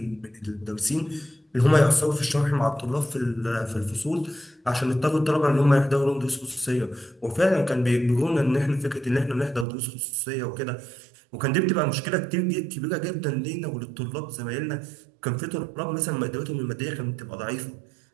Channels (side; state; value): left; drops out; at 9.7 s